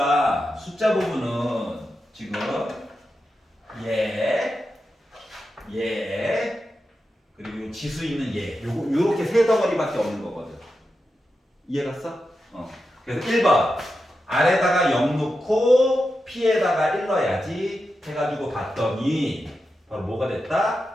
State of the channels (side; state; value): both; normal; correlation 0.89